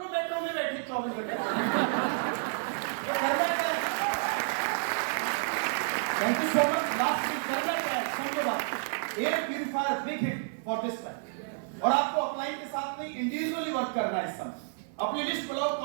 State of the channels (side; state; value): left; silent; 58 dB below the other